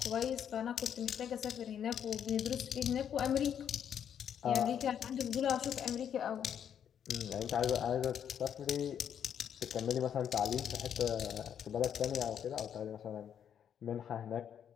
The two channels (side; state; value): right; quieter; 8.8 dB